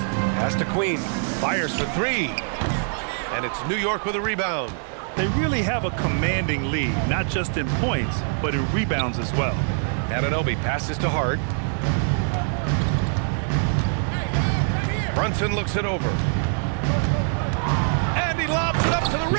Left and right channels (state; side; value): silent; left; 60 dB below the other